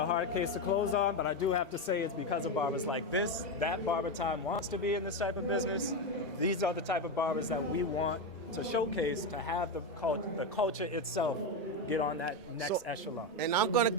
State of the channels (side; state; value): both; normal; correlation 0.11